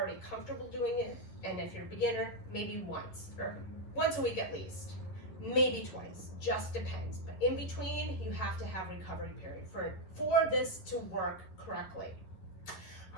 comfortable doing it, and if you're a beginner, maybe once a week at least, maybe twice, just depends. But in between, you have to have recovery period for this to work correctly.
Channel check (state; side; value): late; right; 11 ms